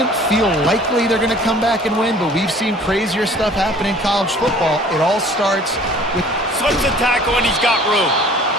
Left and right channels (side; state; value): both; normal; correlation 0.50